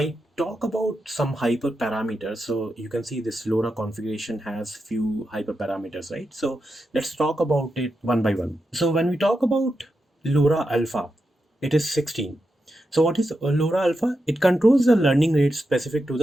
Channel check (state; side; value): normal; both; correlation 0.87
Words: talk about some hyperparameters, so you can see this LoRa configuration has few hyperparameters, right? So let's talk about it one by one. So when we talk about LoRa alpha, it is 16. So what is LoRa alpha? It controls the learning rate specific to